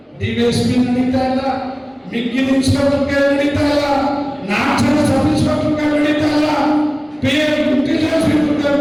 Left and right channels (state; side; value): identical; both; correlation 1.00